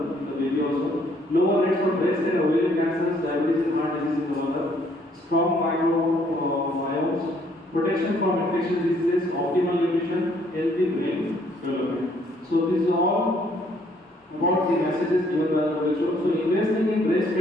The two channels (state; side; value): normal; both; correlation 0.65